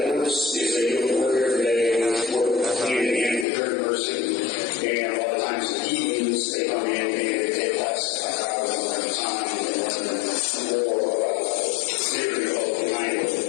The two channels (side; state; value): right; drops out; at 3.5 s